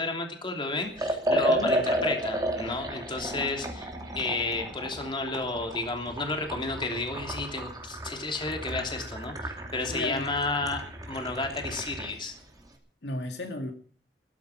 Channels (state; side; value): normal; both; correlation 0.31